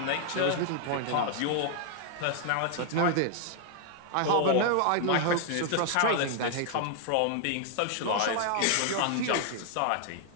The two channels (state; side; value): different; both; correlation 0.00